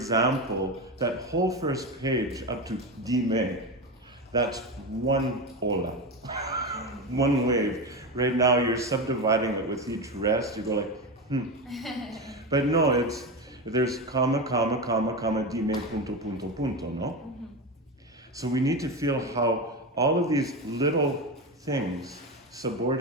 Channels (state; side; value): normal; both; correlation 0.18